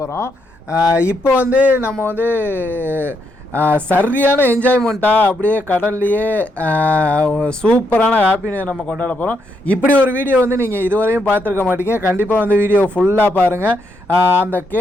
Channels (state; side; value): normal; both; correlation 0.78